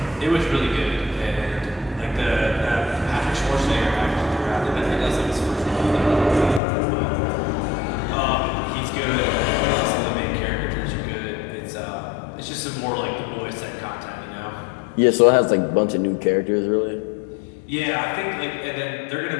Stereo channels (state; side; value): drops out; right; at 6.6 s